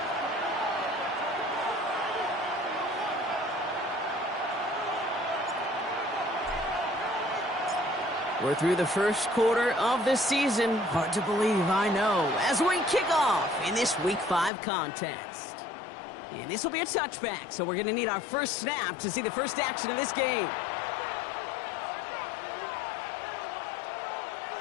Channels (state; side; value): drops out; right; at 14.5 s